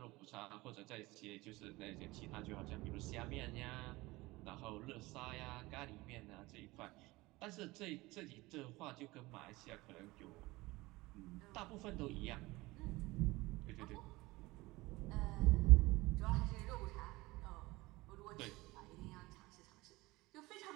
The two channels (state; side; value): quieter; left; 21.0 dB